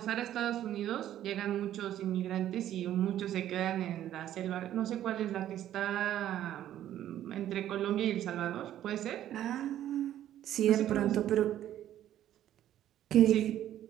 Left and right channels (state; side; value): quieter; left; 11.9 dB